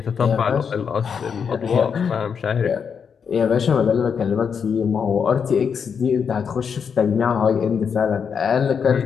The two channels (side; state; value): right; quieter; 6.7 dB